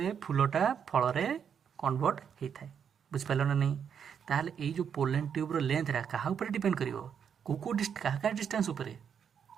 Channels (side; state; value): left; quieter; 7.7 dB